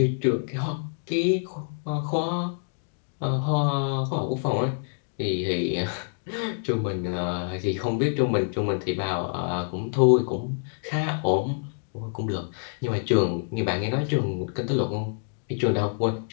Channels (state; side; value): silent; right; digital silence